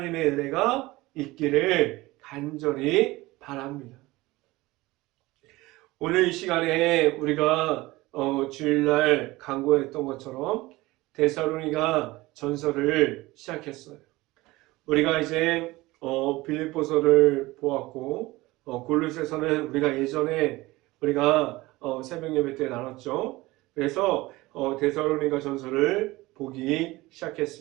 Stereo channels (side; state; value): left; quieter; 20.0 dB